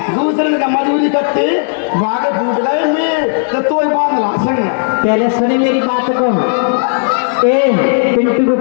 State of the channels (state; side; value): silent; right; digital silence